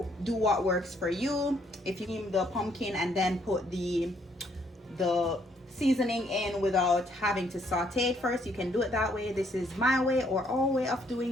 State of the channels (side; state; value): both; normal; correlation 0.69